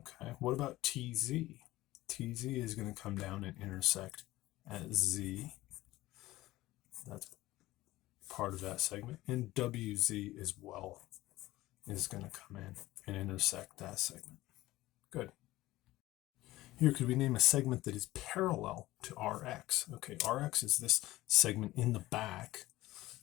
what about TZ? TZ is going to come down and intersect at Z. That's part of that segment. And WZ as well is going to come in and intersect that segment. Good. Here, could we name a segment that is parallel to RX? Okay, RX is this segment in the back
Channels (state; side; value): quieter; right; 17.3 dB